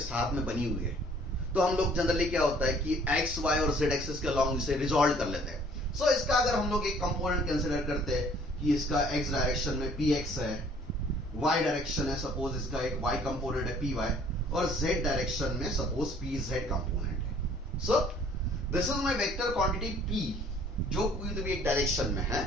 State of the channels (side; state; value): both; normal; correlation 0.57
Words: में बनी हुई है, तो हम लोग जनरली क्या होता है कि x, y और z एक्सिस के अलोंग इसे रिजॉल्व कर लेते हैं। सो इसका अगर हम लोग एक कंपोनेंट कंसीडर करते हैं कि इसका x डायरेक्शन में px है, y डायरेक्शन है सपोज इसका एक y कंपोनेंट है py, और z डायरेक्शन में सपोज pz कंपोनेंट है। So this is my vector quantity p, जो कोई तो भी एक डायरेक्शन में है,